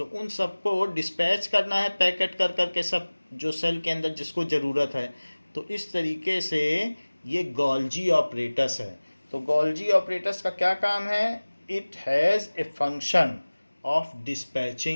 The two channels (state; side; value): inverted; both; correlation -1.00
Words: उन सबको डिस्पैच करना है पैकेट कर करके, सब जो सेल के अंदर जिसको ज़रूरत है। तो इस तरीके से ये गोल्जी ऑपरेटस है। तो गोल्जी ऑपरेटस का क्या काम है? It has a function of